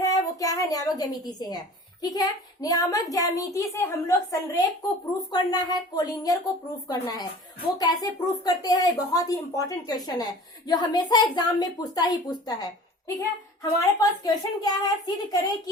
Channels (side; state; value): both; normal; correlation 0.43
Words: वो क्या है? नियामक ज्यामिति से है। ठीक है, नियामक ज्यामिति से हम लोग संरेख को प्रूफ करना है, कोलिनियर को प्रूफ करना है। वो कैसे प्रूफ करते हैं? बहुत ही इंपॉर्टेंट क्वेश्चन है जो हमेशा एग्जाम में पूछता है। ठीक है, हमारे पास क्वेश्चन क्या है? सिद्ध करें